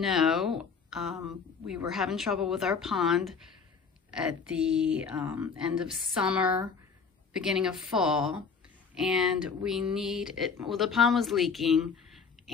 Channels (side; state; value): right; quieter; 5.6 dB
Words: we were having trouble with our pond at the end of summer, beginning of fall, and we need it. Well, the pond was leaking,